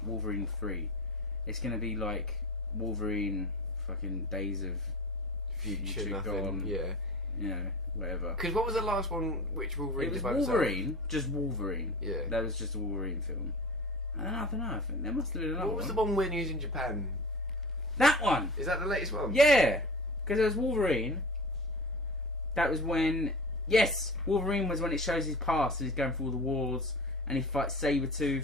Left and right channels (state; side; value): normal; both; correlation 0.35